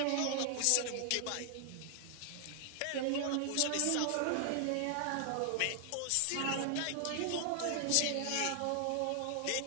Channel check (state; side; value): different; both; correlation 0.00